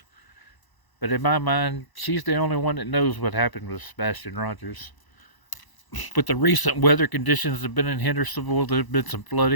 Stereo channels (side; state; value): right; late; 1.0 ms